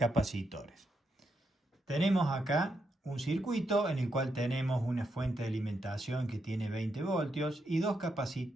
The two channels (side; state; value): both; normal; correlation 0.82